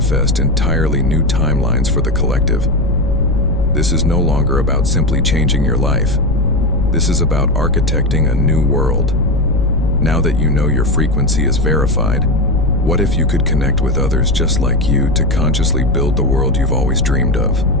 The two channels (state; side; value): noise; left; rumble, 3 dB below the sound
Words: entirely new timelines for the collective. This is no longer about simply changing your life. This is about architecting a new world. Now that you know your frequency is verified, what if you could connect with others just like you to consciously build the world you've always dreamed of?